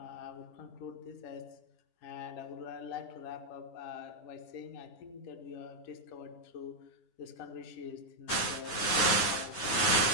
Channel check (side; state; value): right; late; 10 ms